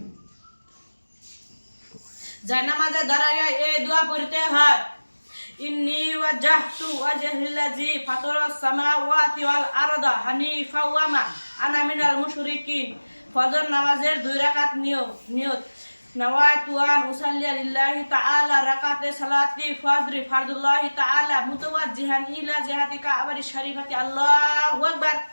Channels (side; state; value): both; inverted; correlation -1.00